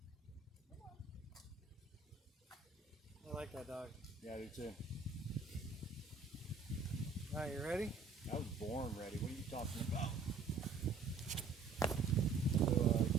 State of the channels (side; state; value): left; quieter; 4.4 dB